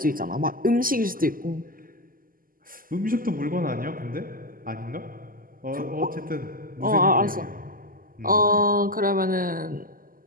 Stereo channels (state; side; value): late; left; 0.41 ms